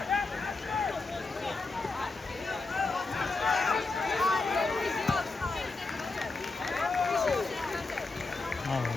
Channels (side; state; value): right; quieter; 3.7 dB